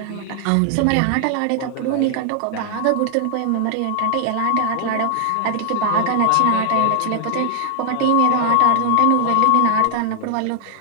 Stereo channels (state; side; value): different; both; correlation 0.00